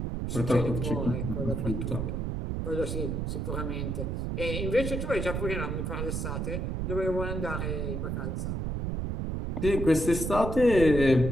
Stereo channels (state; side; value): noise; right; rumble, 2 dB below the sound